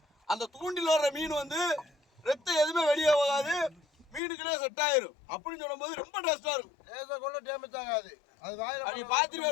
அந்த தூண்டில் வர்ற மீன் வந்து ரத்தம் எதுவுமே வெளியே போகாது, மீனுக்குள்ளே செட் ஆயிரும். அப்படின்னு சொல்லும்போது ரொம்ப டேஸ்டா இருக்கும். கூட டேமேஜ் ஆகாது. அது வாயில அப்படி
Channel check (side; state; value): right; drops out; at 4.2 s